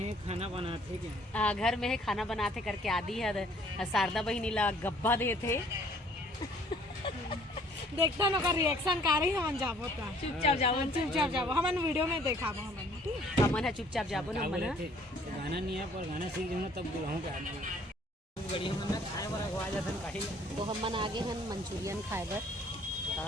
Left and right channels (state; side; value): normal; both; correlation 0.58